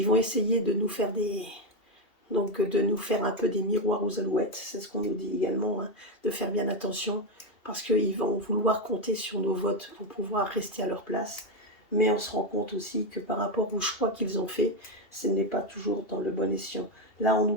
vont essayer de nous faire de nous faire un peu des miroirs aux alouettes. C'est ce qu'on nous dit également, hein, de faire bien attention, parce qu'ils vont vouloir compter sur nos votes pour pouvoir rester à leur place. Mais on se rend compte aussi que par rapport aux choix qu'ils ont faits, ce n'est pas toujours dans le bon escient. Là, on nous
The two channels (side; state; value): right; late; 2.7 ms